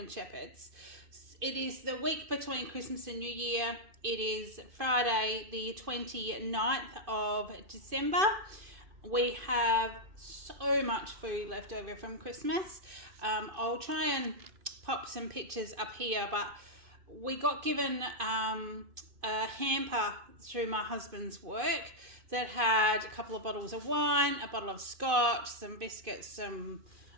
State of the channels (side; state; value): left; late; 2.5 ms